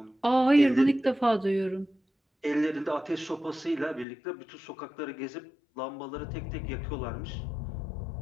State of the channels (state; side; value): drops out; right; at 4.0 s